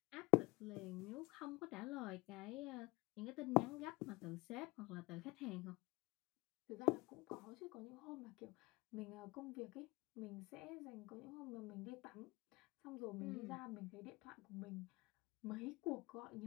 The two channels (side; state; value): right; quieter; 22.9 dB